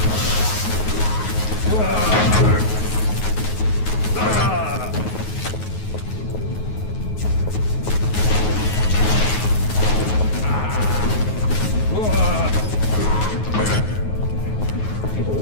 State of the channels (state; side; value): late; right; 9.4 ms